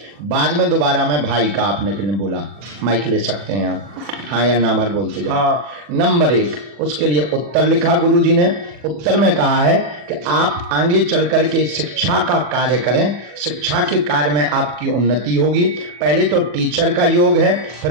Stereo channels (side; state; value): left; late; 40 ms